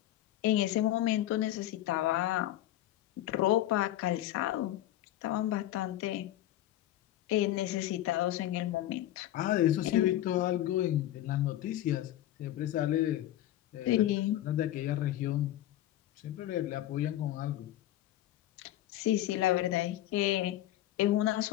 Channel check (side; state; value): right; quieter; 13.7 dB